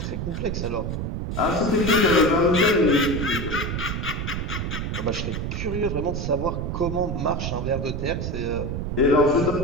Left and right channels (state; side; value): noise; right; rumble, 3 dB below the sound